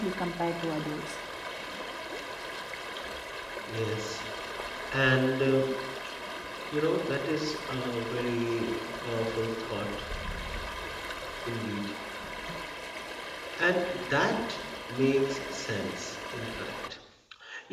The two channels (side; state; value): both; identical; correlation 1.00